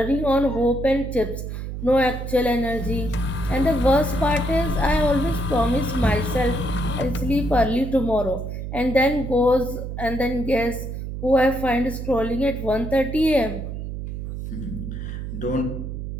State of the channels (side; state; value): right; noise; hum, 6 dB below the sound